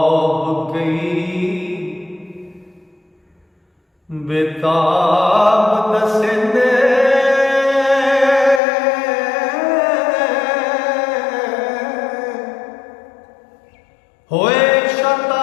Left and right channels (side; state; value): right; drops out; at 8.6 s